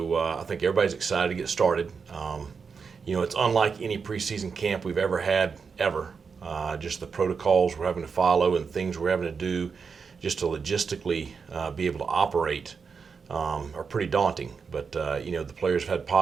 I think everybody's excited to get started. It's unlike any preseason camp we've ever had ever. Just the protocols we're having to follow and things we're having to do just to logistically be able to operate are pretty daunting. But the players have had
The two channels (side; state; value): left; quieter; 5.6 dB